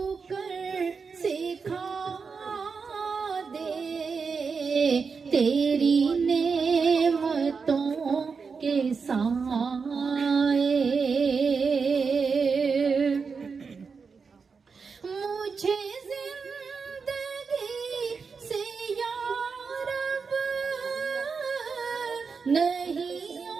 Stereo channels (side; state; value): left; quieter; 5.3 dB